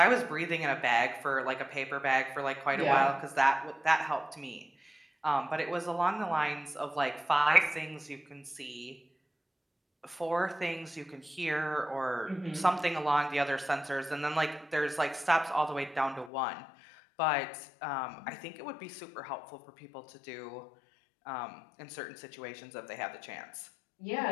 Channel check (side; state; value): right; drops out; at 16.3 s